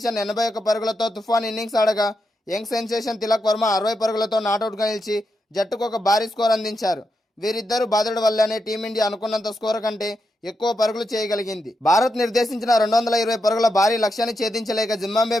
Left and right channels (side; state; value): both; normal; correlation 0.85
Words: 81 పరుగులతో తుఫాన్ ఇన్నింగ్స్ ఆడగా యంగ్ సెన్సేషన్ తిలక్ వర్మ 60 పరుగులతో నాటౌట్గా నిలిచి జట్టుకు ఒక భారీ స్కోర్ అందించారు. వీరిద్దరూ బాధుడు వల్లనే టీమిండియా అనుకున్నంత స్కోర్ కంటే ఎక్కువ పరుగులు చేయగలిగింది. భారత్ నిర్దేశించిన 220 పరుగుల భారీ లక్ష్యాన్ని ఛేదించలేక జింబాబ్వే